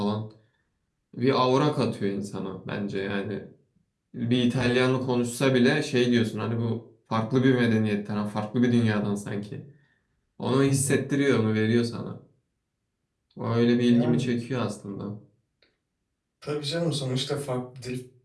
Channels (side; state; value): both; identical; correlation 1.00